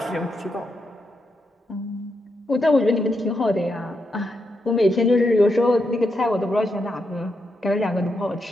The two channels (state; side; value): normal; both; correlation 0.83